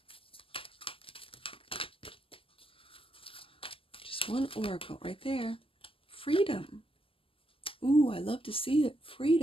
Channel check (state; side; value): late; right; 0.26 ms